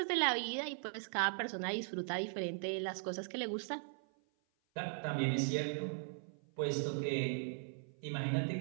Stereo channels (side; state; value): left; silent; 52 dB below the other